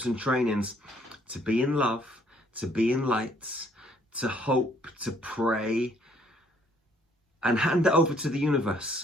and trainings to be in love, to be in light, to hope, to pray, and hand it over to the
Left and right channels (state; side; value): normal; both; correlation 0.64